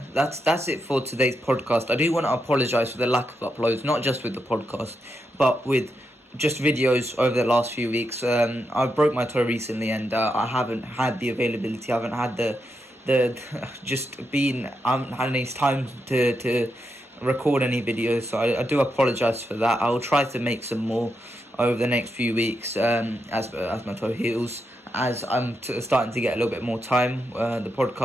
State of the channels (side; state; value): both; normal; correlation 0.84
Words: it for today's podcast. I do want to apologise for the lack of uploads, not just with the podcast, but with just videos over the last few weeks. I broke my toe recently, and I haven't had the availability. I haven't had the I haven't had any time to record any videos. So I do apologise for that. I'll try to make some more over the next few weeks as my toe heals. As I'm starting to get a little bit more time, the